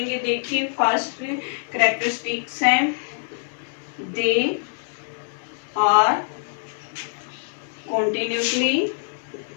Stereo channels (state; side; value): silent; right; digital silence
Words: देखिए, फर्स्ट कैरेक्टरिस्टिक्स हैं, दे आर continuously